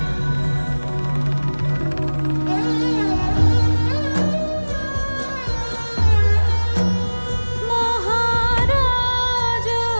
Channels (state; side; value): inverted; both; correlation -1.00